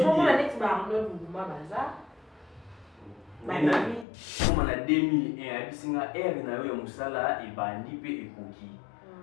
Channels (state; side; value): drops out; right; at 4.0 s